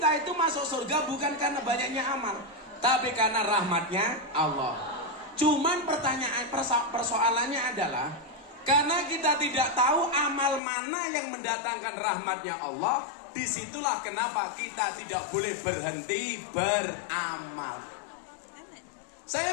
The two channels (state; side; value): drops out; right; at 10.6 s